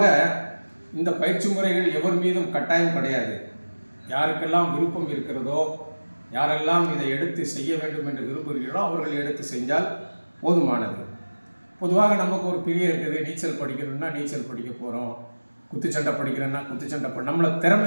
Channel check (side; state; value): both; inverted; correlation -1.00